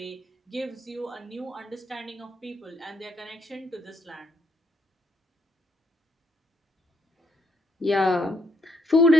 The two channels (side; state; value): both; normal; correlation 0.74